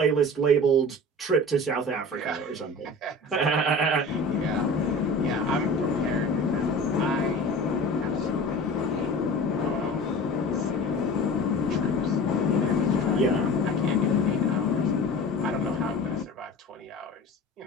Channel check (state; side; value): normal; both; correlation 0.38